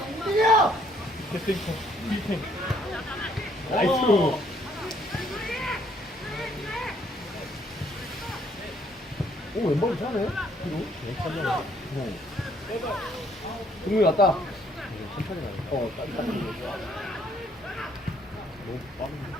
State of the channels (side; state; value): both; normal; correlation 0.66